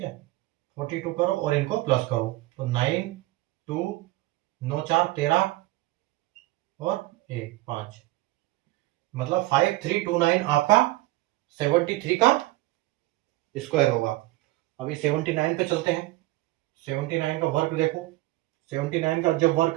है, 42 करो और इनको प्लस करो, तो 9 2 9 4 13 और 1 5, मतलब 5329 आपका 73 का स्क्वायर होगा। अभी 79 पे चलते हैं। 79 का वर्क देखो, 79 का जब वर्क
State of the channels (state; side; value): quieter; left; 18.7 dB